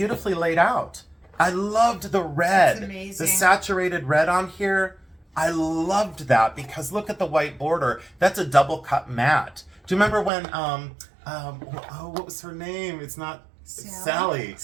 laid out. I loved the red. That's amazing. The saturated red on here. I loved that because look at the white border. That's a double cut matte. Do you remember when, what was her name? It's not... Sally.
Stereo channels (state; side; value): drops out; left; at 10.3 s